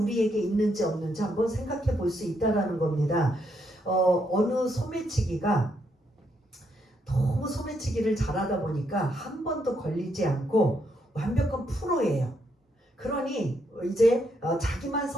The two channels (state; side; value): normal; both; correlation 0.77